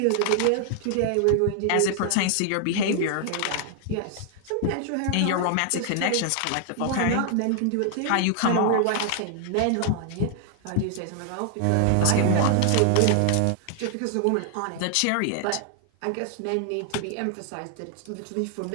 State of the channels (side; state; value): both; different; correlation 0.00